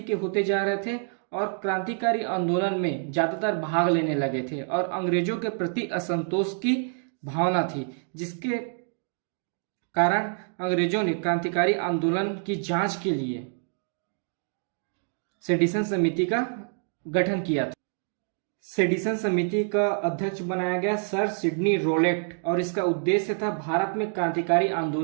के होते जा रहे थे और क्रांतिकारी आंदोलन में ज्यादातर भाग लेने लगे थे और अंग्रेजों के प्रति असंतोष की भावना थी, जिसके कारण अंग्रेजों ने क्रांतिकारी आंदोलन की जांच के लिए सेडिशन समिति का गठन किया था। सेडिशन समिति का अध्यक्ष बनाया गया सर सिडनी रोलेट और इसका उद्देश्य था भारत में क्रांतिकारी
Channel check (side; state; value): left; silent; 58 dB below the other